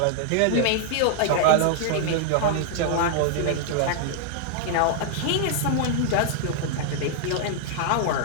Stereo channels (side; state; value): both; different; correlation -0.01